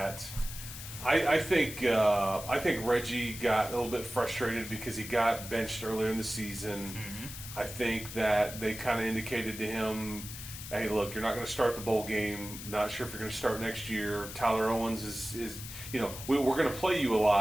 I think Reggie got a little bit frustrated because he got benched earlier in the season. Mm-hmm. I think that they kind of indicated to him, hey, look, you're not going to start the bowl game. Not sure if you're going to start next year. Tyler Owens is we're going to play you a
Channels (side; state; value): left; noise; hiss, 11 dB below the sound